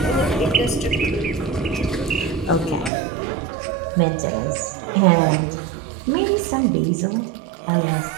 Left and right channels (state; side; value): drops out; left; at 2.9 s